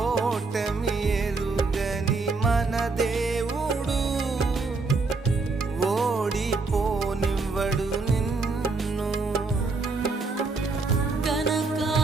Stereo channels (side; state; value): left; quieter; 3.9 dB